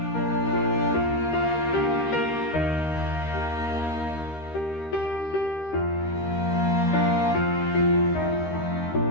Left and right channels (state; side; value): late; right; 13 ms